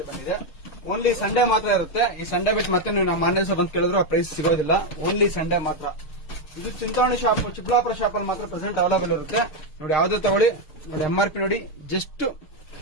ಬಂದಿದೆ. ಓನ್ಲಿ ಸಂಡೇ ಮಾತ್ರ ಇರುತ್ತೆ. ಈ ಸಂಡೇ ಬಿಟ್ಟು ಮತ್ತೆ ನೀವು ನಮ್ಮ ಆನ್ಲೈನ್ ಶಾಪ್ ಅಂತ ಕೇಳಿದ್ರು ಆ ಪ್ರೈಸ್ ಸಿಗೋದಿಲ್ಲ. ಓನ್ಲಿ ಸಂಡೇ ಮಾತ್ರ. ಇದು ಚಿಂತಾಮಣಿ ಶಾಪ್, ಚಿಕ್ಕಬಳ್ಳಾಪುರ ಶಾಪ್ ಅಲ್ಲಿ ಮಾತ್ರ ಪ್ರೆಸೆಂಟ್ ಅವೈಲೇಬಲ್ ಇರುತ್ತೆ ನೋಡಿ. ಯಾವ್ದು ತಗೊಳ್ಳಿ ನೋಡಿ. MRP ನೋಡಿ, ಜಸ್ಟ್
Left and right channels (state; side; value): late; right; 6.5 ms